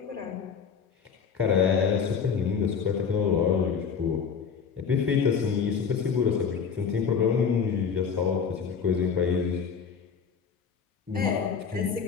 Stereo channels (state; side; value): quieter; right; 6.4 dB